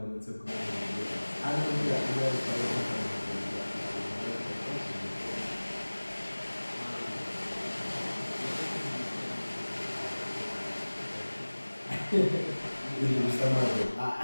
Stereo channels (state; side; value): inverted; both; correlation -1.00